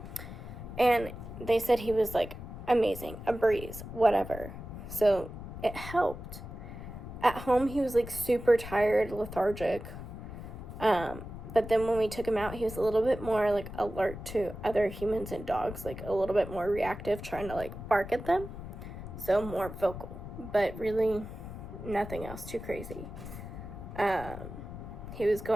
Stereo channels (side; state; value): left; noise; rumble, 10 dB below the sound